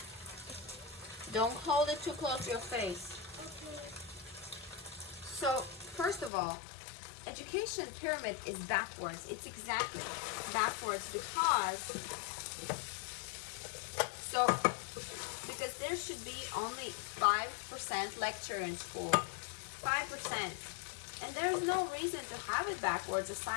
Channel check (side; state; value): right; drops out; at 6.3 s